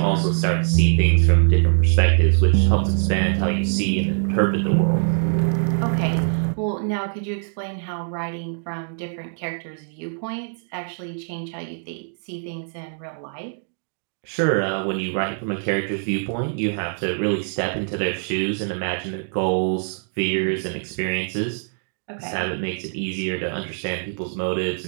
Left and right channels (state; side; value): silent; left; digital silence